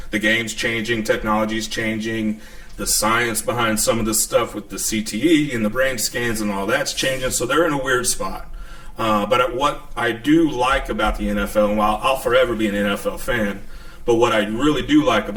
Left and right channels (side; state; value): both; identical; correlation 1.00